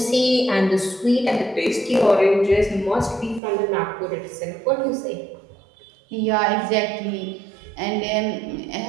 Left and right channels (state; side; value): drops out; left; at 3.4 s